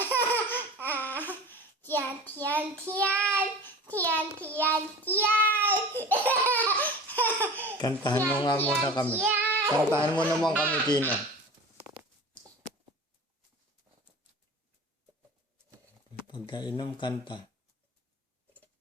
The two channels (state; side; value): normal; both; correlation 0.37